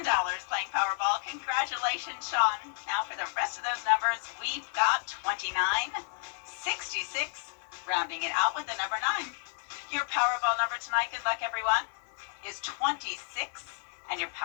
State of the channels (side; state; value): right; silent; 57 dB below the other